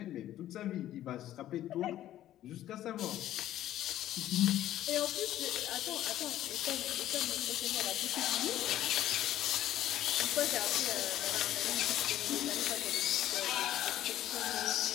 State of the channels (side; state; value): right; quieter; 13.0 dB